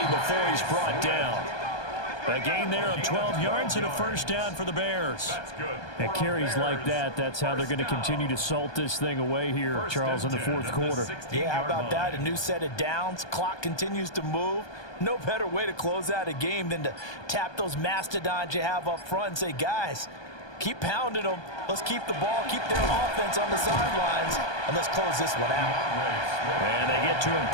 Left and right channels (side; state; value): right; late; 1.2 ms